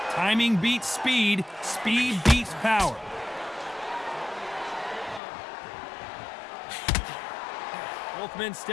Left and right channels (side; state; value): right; drops out; at 5.2 s